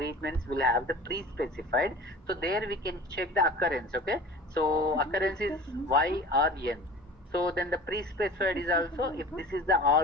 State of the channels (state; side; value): normal; both; correlation 0.39